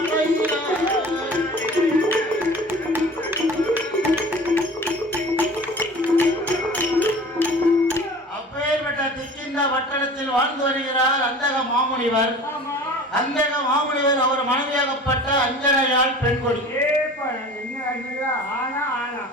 அப்பேற்பட்ட திக்கிந்த வட்டணத்தில் வாழ்ந்து வருகிறார் அந்தக மாமுனிவர். அந்தக மாமுனிவர் அவர் மனைவியாகப்பட்ட அஞ்சனையால் பெண்கொடி.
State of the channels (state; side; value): normal; both; correlation 0.42